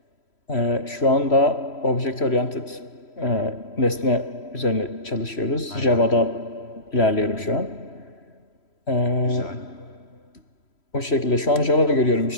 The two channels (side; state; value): right; late; 3.1 ms